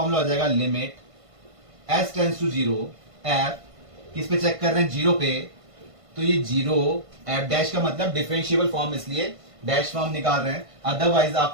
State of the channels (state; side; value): late; left; 1.5 ms